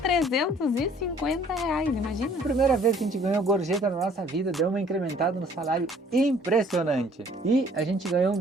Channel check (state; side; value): normal; both; correlation 0.57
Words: imagina? Primeira vez que a gente ganhou gorjeta na nossa vida, deu uma incrementada no salário impressionante. E a gente ganhou um